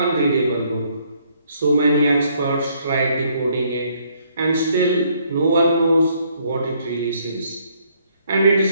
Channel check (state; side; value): inverted; both; correlation -0.67